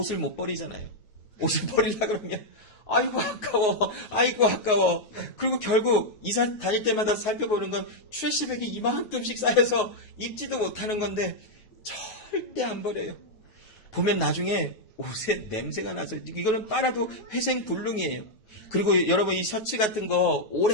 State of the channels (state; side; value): late; right; 9.4 ms